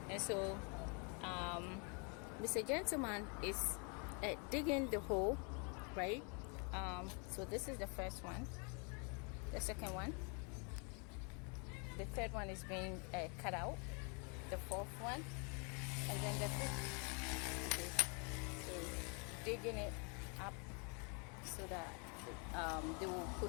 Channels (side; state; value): right; quieter; 35.6 dB